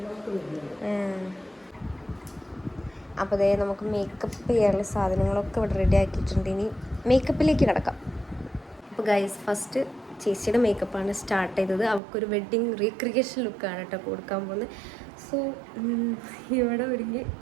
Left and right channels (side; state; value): left; drops out; at 12.0 s